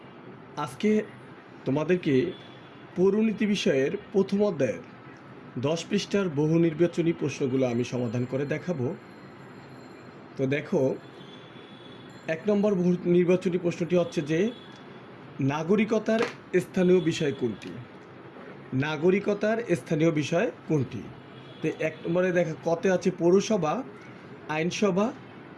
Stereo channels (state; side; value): identical; both; correlation 1.00